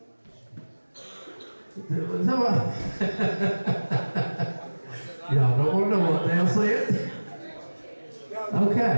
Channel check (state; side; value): inverted; both; correlation -1.00